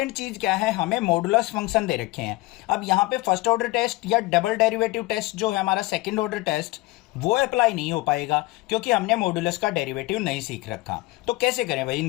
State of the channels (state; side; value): quieter; right; 20.6 dB